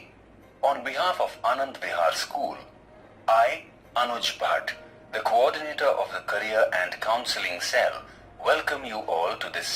On behalf of Anand Vihar School, I, Anuj Bhatt, the coordinator of the Career and Counseling Cell, welcome you all to this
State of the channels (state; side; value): identical; both; correlation 1.00